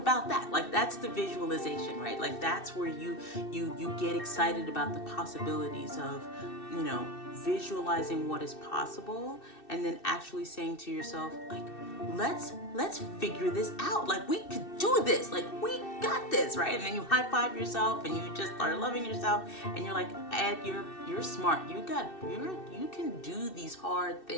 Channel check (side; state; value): right; late; 2.6 ms